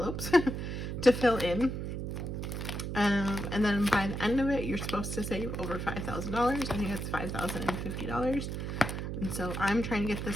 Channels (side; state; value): right; noise; hum, 4 dB below the sound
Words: to fill in. And then by the end of it, you're supposed to save over $5,000. I think it's $5,050. And so I'm trying to get